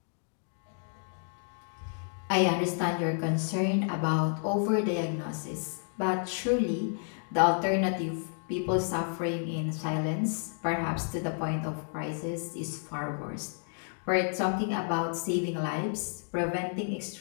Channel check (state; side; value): silent; right; 57 dB below the other